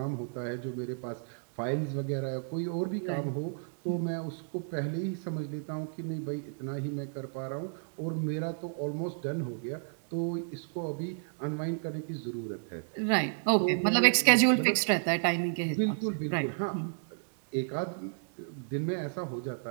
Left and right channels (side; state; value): left; silent; digital silence